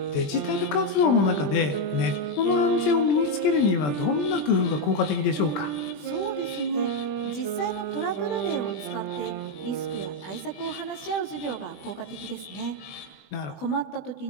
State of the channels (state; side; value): late; right; 20 ms